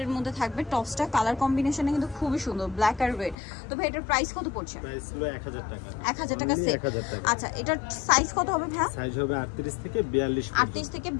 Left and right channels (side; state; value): right; drops out; at 3.4 s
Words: মধ্যে থাকবে। টপসটা কালার কম্বিনেশন কিন্তু খুবই সুন্দর, ব্ল্যাক আর রেড। তো ভাই এটার প্রাইস কত পড়ছে? প্রাইস হলো 1000 টাকা। 1000 টাকা সেট। আচ্ছা, এটার সাইজ কত হবে ভাই? সাইজ হবে 38 থেকে 42 পর্যন্ত। 38 থেকে